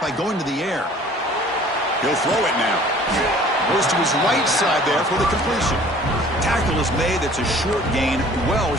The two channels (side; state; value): both; normal; correlation 0.51